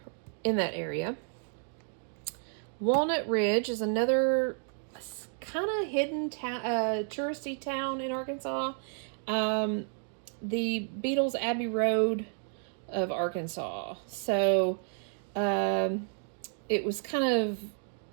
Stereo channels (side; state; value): left; silent; 57 dB below the other